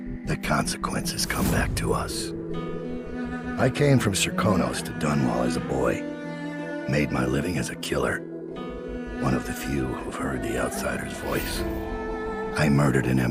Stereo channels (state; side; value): identical; both; correlation 1.00